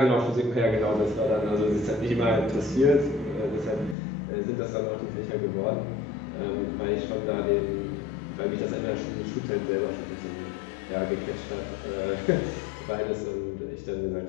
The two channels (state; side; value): drops out; right; at 4.0 s